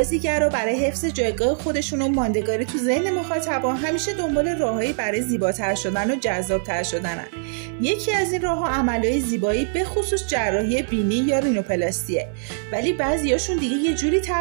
برای حفظ جایگاه خودشون و ماندگاری تو ذهن مخاطبا همیشه دنبال راههایی برای زیباتر شدن و جذابتر شدنن. یکی از این راهها عملهای زیبایی به خصوص جراحی بینی یا رینوپلاستیه. ولی بعضیاشون دیگه یه جوری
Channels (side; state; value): left; silent; digital silence